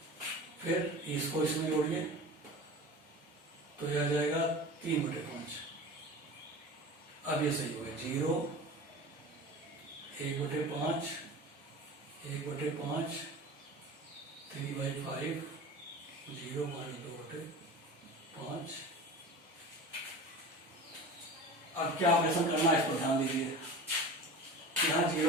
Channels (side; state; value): both; normal; correlation 0.34